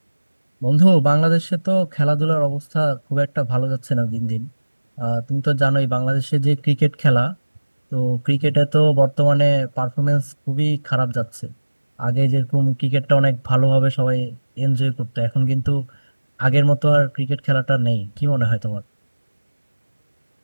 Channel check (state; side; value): inverted; both; correlation -1.00